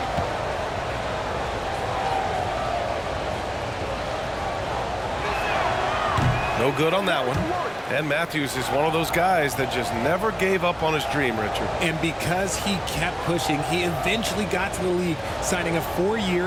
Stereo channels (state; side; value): identical; both; correlation 1.00